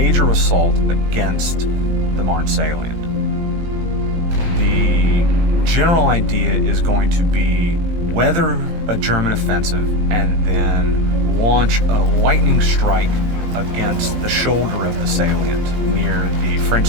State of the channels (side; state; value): left; late; 19 ms